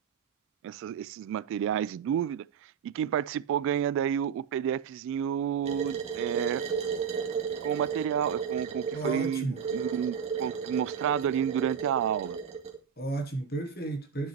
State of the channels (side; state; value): left; quieter; 7.5 dB